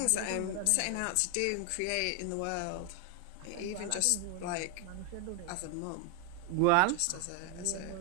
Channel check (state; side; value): different; both; correlation 0.01